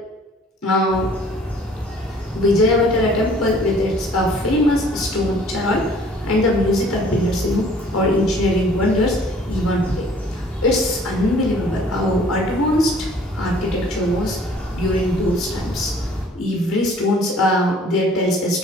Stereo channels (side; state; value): both; normal; correlation 0.54